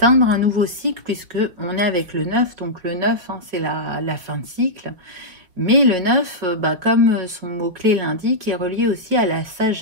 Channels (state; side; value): late; left; 5.6 ms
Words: un nouveau cycle, puisque on est avec le 9, donc le 9 hein, c'est la fin de cycle, mais le 9 comme son mot-clé l'indique, est relié aussi à la